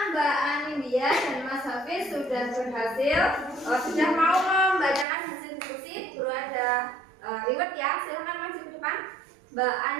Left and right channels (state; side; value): drops out; left; at 5.1 s